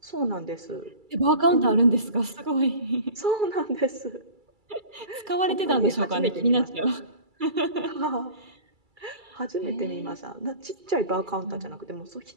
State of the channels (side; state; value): left; late; 2.3 ms